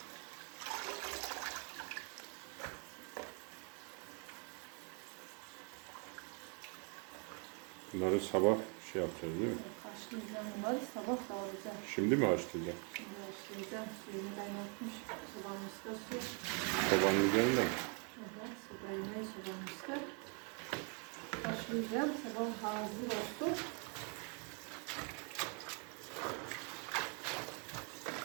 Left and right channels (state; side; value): quieter; left; 37.5 dB